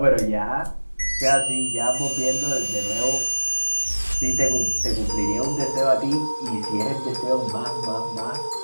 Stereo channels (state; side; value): inverted; both; correlation -1.00